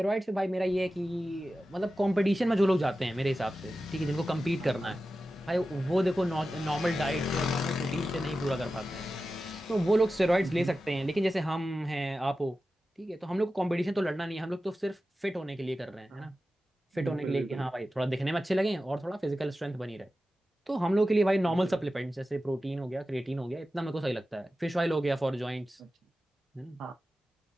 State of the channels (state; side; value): normal; both; correlation 0.94